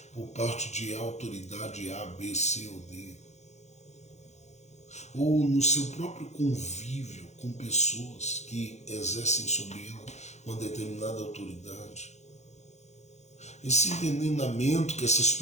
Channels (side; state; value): right; late; 0.33 ms